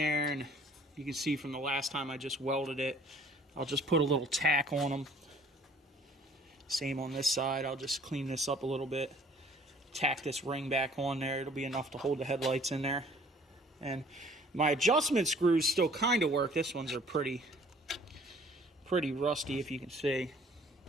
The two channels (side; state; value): both; normal; correlation 0.55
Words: and you can see from the last time I just welded it, I'll just put a little tack on them. Same on this side. I'll just clean this up a little bit, tack this ring back on there. It'll be enough to hold the headlights in there. And my adjustment screws still kind of work. This ones are pretty rusty, if you can see